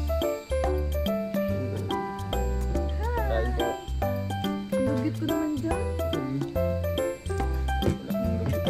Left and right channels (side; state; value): both; identical; correlation 1.00